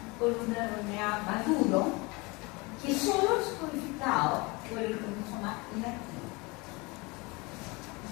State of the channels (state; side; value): quieter; right; 26.0 dB